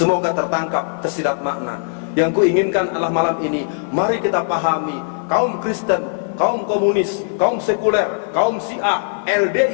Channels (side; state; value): right; silent; 55 dB below the other